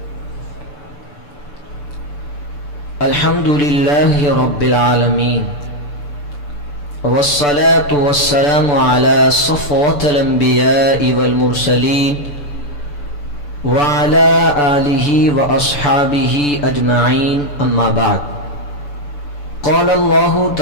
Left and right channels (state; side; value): late; right; 6.9 ms